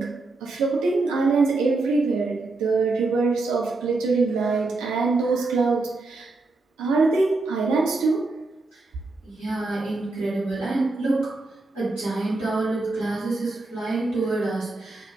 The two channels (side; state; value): left; quieter; 3.3 dB